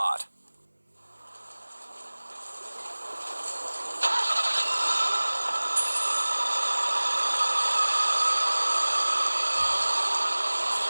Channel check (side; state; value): both; inverted; correlation -1.00